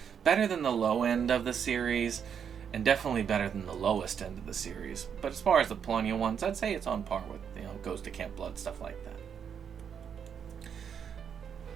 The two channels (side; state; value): left; quieter; 7.6 dB